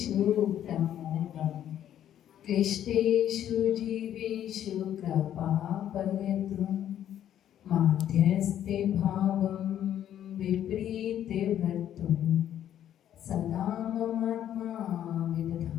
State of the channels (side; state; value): right; quieter; 10.8 dB